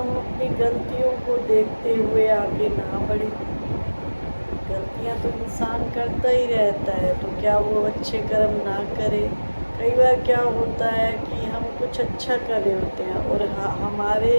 अपनी गलतियों को देखते हुए आगे ना बढ़ें? गलतियां तो इंसान करता ही रहता है, तो क्या वो अच्छे कर्म ना करे? कई बार क्या होता है कि हम कुछ अच्छा कर रहे होते हैं और हमारे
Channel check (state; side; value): inverted; both; correlation -1.00